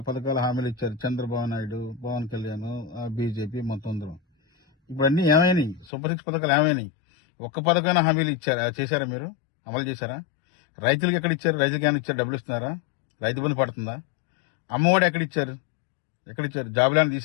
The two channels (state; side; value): drops out; right; at 5.9 s